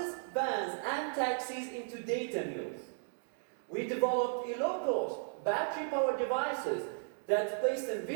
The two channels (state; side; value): silent; left; digital silence